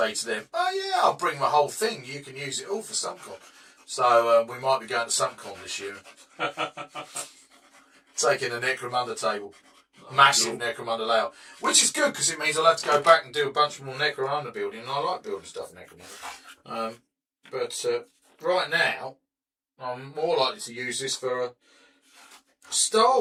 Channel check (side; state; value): both; identical; correlation 1.00